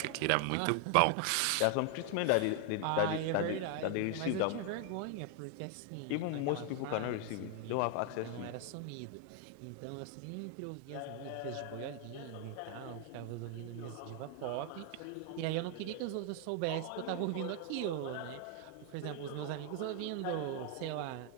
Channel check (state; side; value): different; both; correlation 0.00